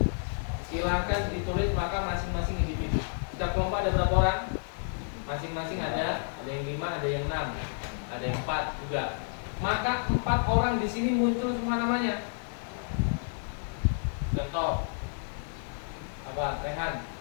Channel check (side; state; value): right; silent; digital silence